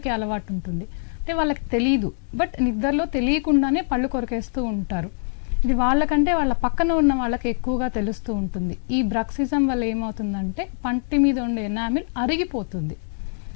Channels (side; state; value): right; silent; digital silence